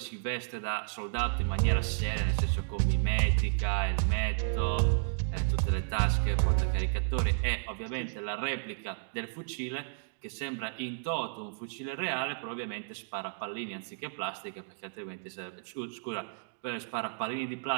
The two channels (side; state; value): left; silent; digital silence